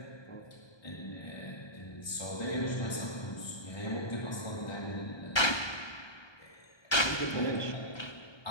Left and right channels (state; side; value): late; right; 1.2 ms